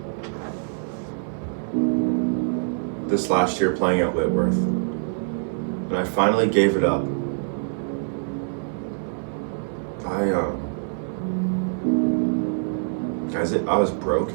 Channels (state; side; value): silent; left; digital silence